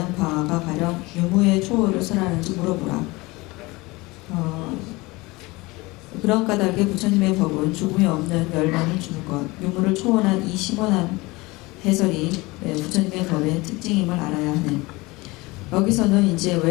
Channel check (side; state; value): right; quieter; 22.8 dB